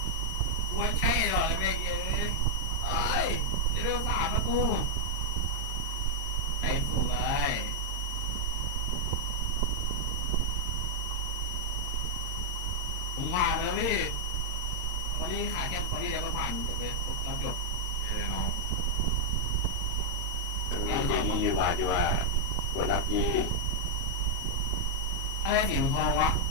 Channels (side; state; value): right; late; 22 ms